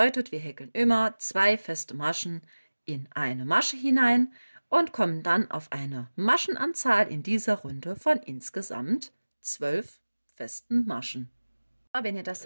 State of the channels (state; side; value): inverted; both; correlation -1.00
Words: wir häkeln immer 2 feste Maschen in eine Masche hinein und kommen dann auf eine Maschenanzahl in dieser Runde von insgesamt 12 festen Maschen. Wenn ihr das